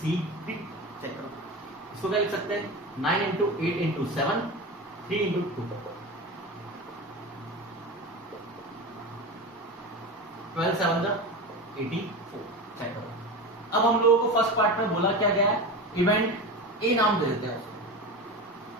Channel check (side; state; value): both; normal; correlation 0.26